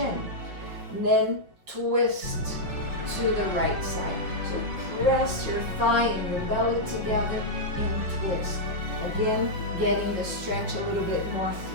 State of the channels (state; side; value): late; left; 5.4 ms